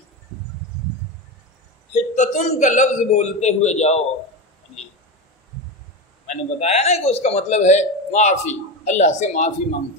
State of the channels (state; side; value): normal; both; correlation 0.19